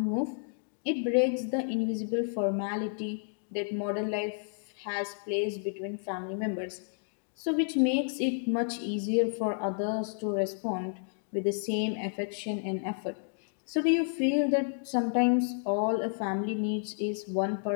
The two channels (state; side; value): silent; right; digital silence